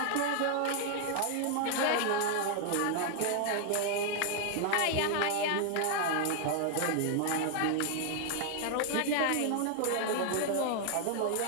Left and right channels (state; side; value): different; both; correlation 0.00